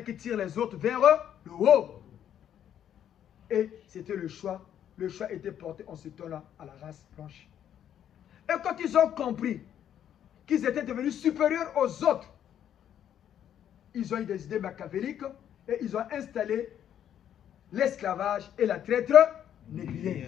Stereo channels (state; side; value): quieter; right; 10.0 dB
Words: tire les autres vers le haut. Et c'était le choix. Le choix était porté en ce temps-là à la race blanche. Et quand ils ont compris qu'ils étaient devenus supérieurs aux autres, ils ont eu des idées machiavéliques et ils ont installé l'esclavage et la traite